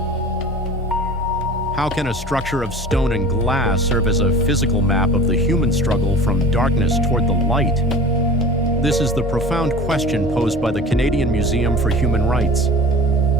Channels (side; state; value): both; normal; correlation 0.40